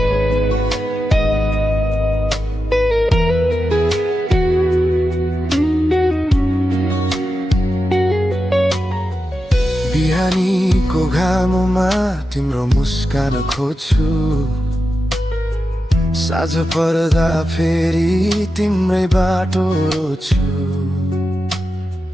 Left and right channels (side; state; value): both; normal; correlation 0.90